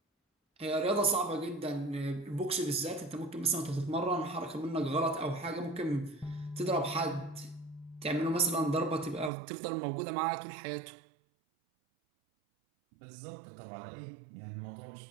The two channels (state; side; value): drops out; left; at 9.3 s